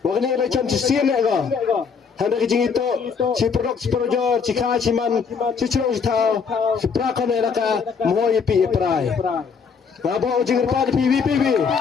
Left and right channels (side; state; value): right; quieter; 5.9 dB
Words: Wakni ile cam sisien lega. Handa kijing itu si produk si projor si kha si man si churong si thao si prakon elaka moy pi prai. Ngabo jing pa pi PVPV.